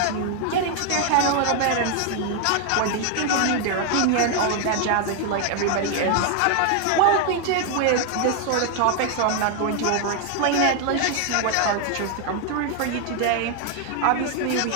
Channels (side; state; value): both; different; correlation 0.00